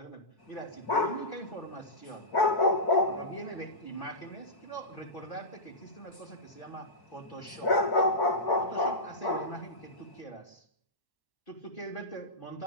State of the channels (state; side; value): late; right; 1.1 ms